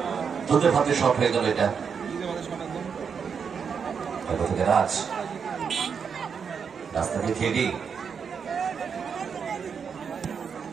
দুধে ভাতে শট হয়ে গেল এটা। রাজ রাস্তা দিয়ে খেলি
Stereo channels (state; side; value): quieter; left; 6.5 dB